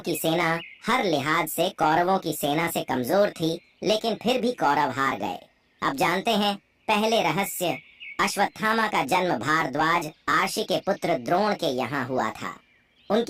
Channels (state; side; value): identical; both; correlation 1.00